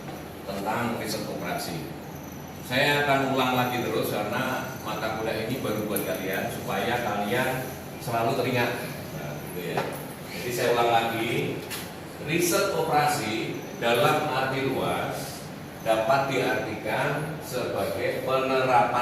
tentang riset operasi. Saya akan ulang lagi terus karena mata kuliah ini baru buat kalian supaya kalian selalu teringat. Nah, gitu ya. Jadi saya ulang lagi, riset operasi dalam arti luas dapat diartikan sebagai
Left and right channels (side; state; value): both; identical; correlation 1.00